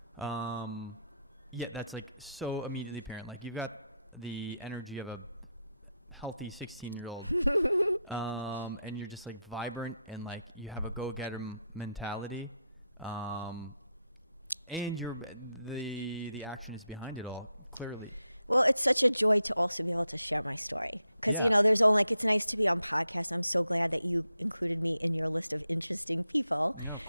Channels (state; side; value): inverted; both; correlation -0.83